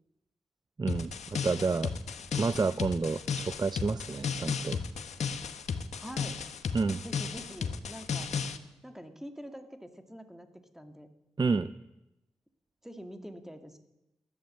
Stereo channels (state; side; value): normal; both; correlation 0.79